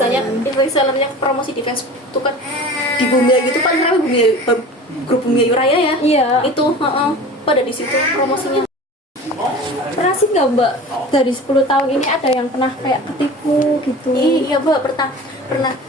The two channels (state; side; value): normal; both; correlation 0.38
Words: resellernya promosi di Facebook itu kan di Bumi Ayu itu paling ramai grup Bumi Ayu Raya ya. Iya. Itu pada di situ promosinya. Pernah sih nggak mbak dari 10 tahun ini ada yang pernah kayak ketipu gitu? Iya mbak, pernah.